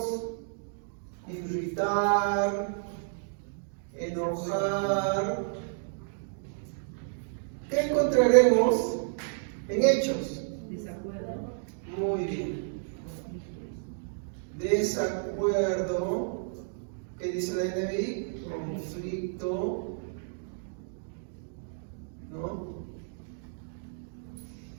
irritar, enojar. ¿Qué encontraremos en Hechos? Desacuerdo. Muy bien. Desacuerdo. ¿Qué dice la NBI? Conflicto. ¿No?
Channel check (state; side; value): silent; left; digital silence